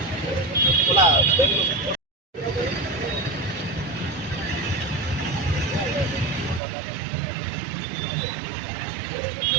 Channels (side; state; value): left; drops out; at 6.6 s